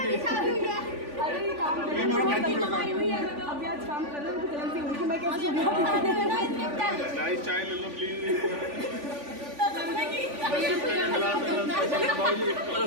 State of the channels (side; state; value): left; late; 3.5 ms